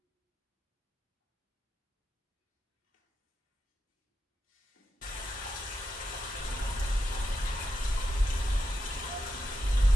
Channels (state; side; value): normal; both; correlation 0.87